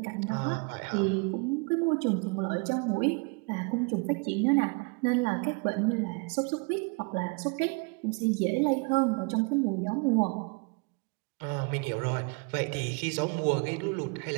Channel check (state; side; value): quieter; left; 31.7 dB